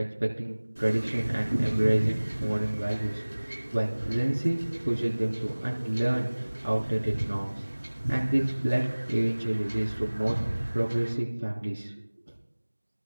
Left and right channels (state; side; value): inverted; both; correlation -1.00